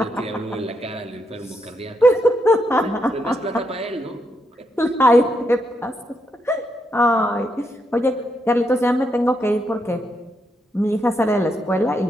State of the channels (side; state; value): both; normal; correlation 0.80